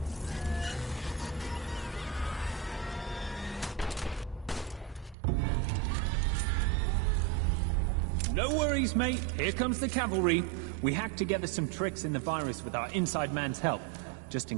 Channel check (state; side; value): drops out; left; at 5.2 s